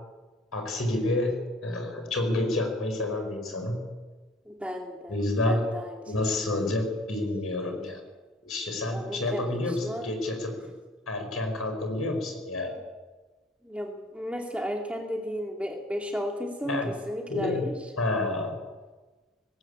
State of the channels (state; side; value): normal; both; correlation 0.52